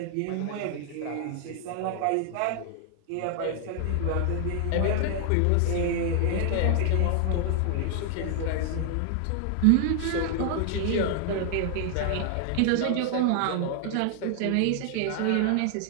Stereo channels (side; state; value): both; different; correlation 0.00